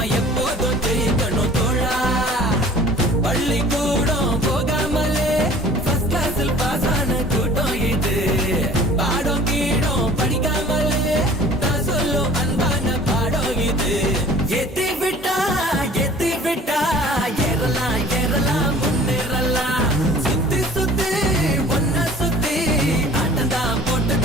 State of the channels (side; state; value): both; normal; correlation 0.48